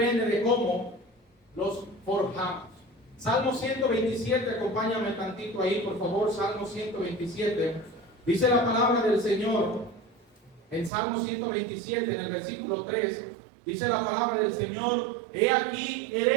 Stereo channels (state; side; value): drops out; left; at 10.9 s